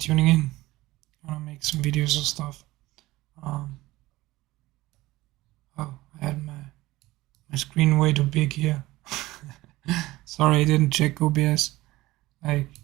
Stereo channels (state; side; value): quieter; left; 18.3 dB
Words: in. I'm gonna make some videos and stuff. Oh, I had my screen way too big here. Sorry, I didn't check OBS. I